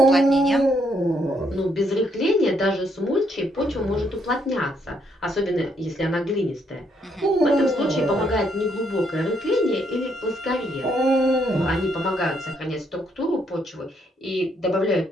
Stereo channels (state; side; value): normal; both; correlation 0.73